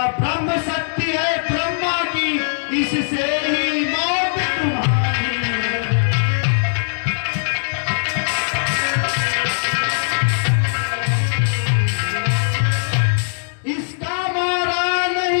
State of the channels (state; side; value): silent; right; digital silence